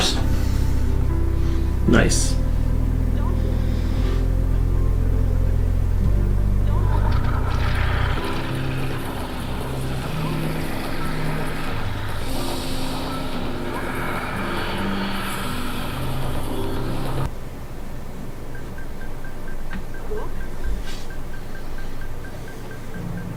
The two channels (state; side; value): identical; both; correlation 1.00